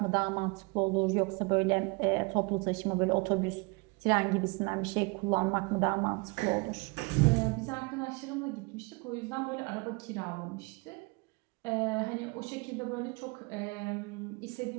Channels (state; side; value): quieter; left; 28.8 dB